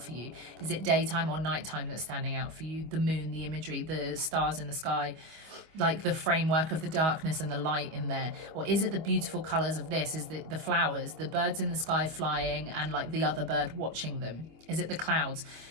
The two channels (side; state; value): left; late; 25 ms